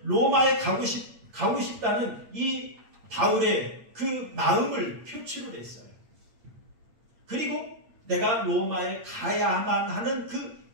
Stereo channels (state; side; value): late; left; 8.6 ms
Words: 로마에 가고 싶다는 이 바울의 그 마음을 표출을 했어요. 그리고 내가 로마에 가야만 하는 그